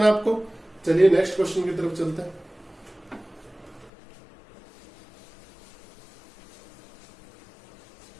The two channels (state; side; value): drops out; right; at 3.9 s